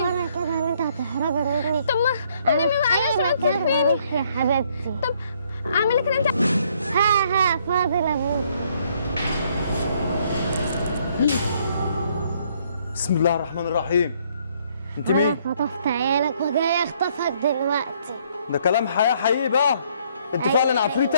كده ان انت هتهربي مني. طب ما انا معلش ما تسيبيني يا حبيبتي. طب اعمل لك انت. ها فاضل ابوك. بسم الله الرحمن الرحيم. انت انا مين؟ خطفت عيالك وجاي اخطفك دلوقتي. ده كلام حياه حقيقي بقى. انت أيوة. فعلا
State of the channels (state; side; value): inverted; both; correlation -0.67